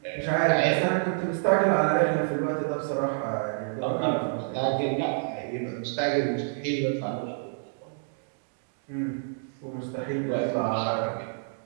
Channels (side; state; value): left; silent; digital silence